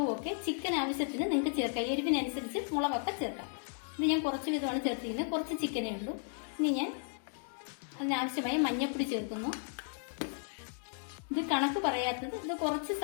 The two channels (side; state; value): right; silent; 55 dB below the other